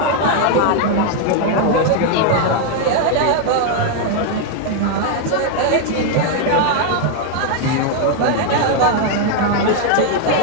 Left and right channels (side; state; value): both; different; correlation 0.00